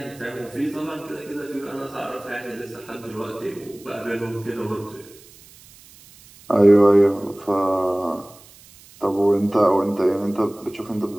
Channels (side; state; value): right; noise; hiss, 23 dB below the sound